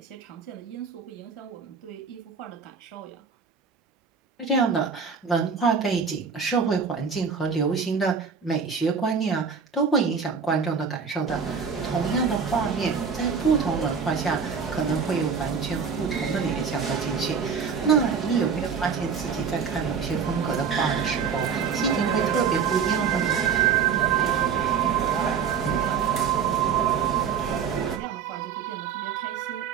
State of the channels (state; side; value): quieter; left; 6.2 dB